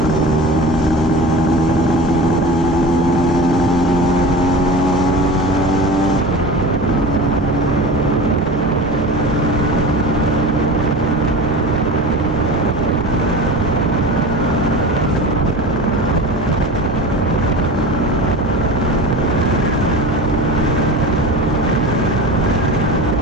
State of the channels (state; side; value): normal; both; correlation 0.33